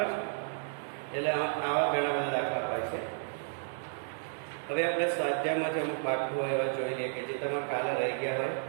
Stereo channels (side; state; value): left; silent; digital silence